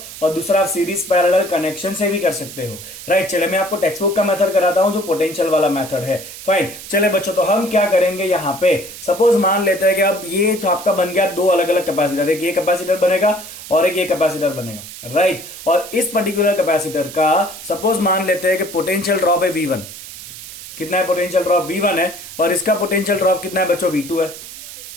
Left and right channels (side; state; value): right; noise; hiss, 13 dB below the sound